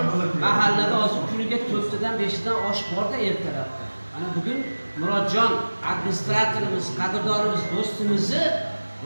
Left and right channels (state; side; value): inverted; both; correlation -1.00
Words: mahallada hozir kuniga 4tadan 5tadan osh bor-da ertalabda. Ana bugun Murodjon administratorimiz, qadrdonimiz, do'stimizni